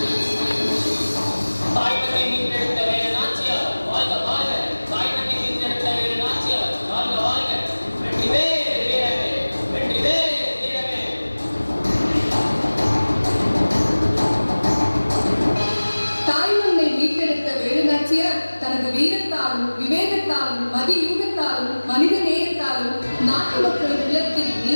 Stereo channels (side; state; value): both; inverted; correlation -1.00